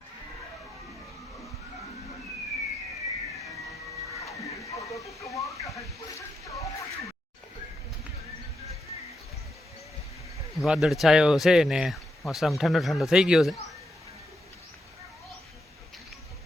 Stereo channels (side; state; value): both; normal; correlation 0.83